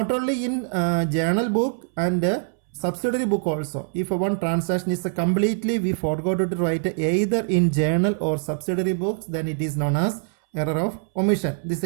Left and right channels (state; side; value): silent; left; 63 dB below the other